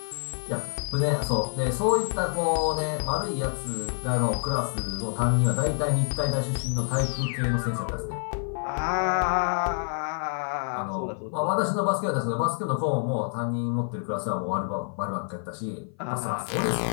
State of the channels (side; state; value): right; silent; 55 dB below the other